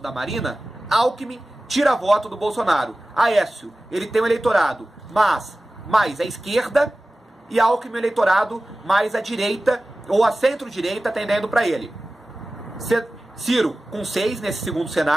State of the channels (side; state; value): both; normal; correlation 0.96